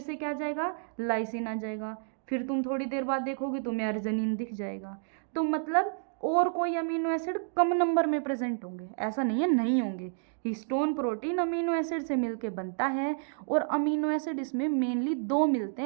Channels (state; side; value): silent; left; digital silence